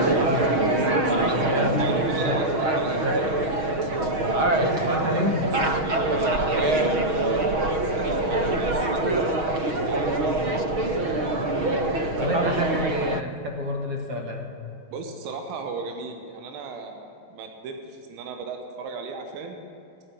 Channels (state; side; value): late; left; 6.3 ms